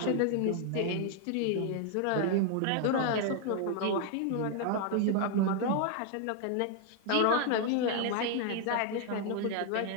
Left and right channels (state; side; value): different; both; correlation 0.00